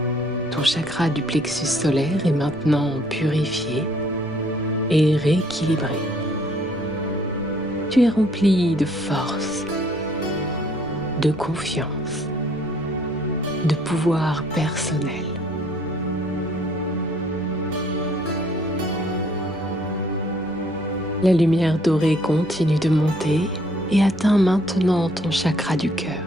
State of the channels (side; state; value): left; noise; rumble, 20 dB below the sound